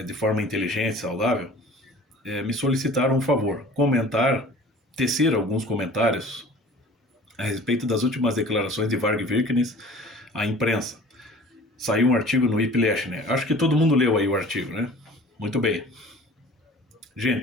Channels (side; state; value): both; normal; correlation 0.45